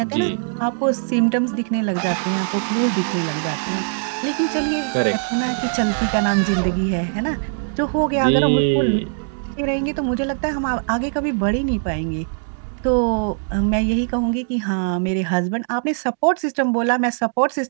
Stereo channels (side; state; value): left; silent; digital silence